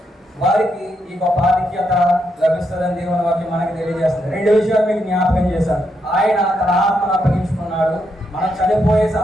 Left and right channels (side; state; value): both; normal; correlation 0.80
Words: వారికి ఈ గొప్ప ఆధిక్యత లభిస్తుందని దేవుని వాక్యం మనకి తెలియజేస్తుంది. 2 విషయాలు మీకు జ్ఞాపకం చేశాను. ఆయన తన ఆత్మను అప్పగించుకున్నాడు. మనం చనిపోయే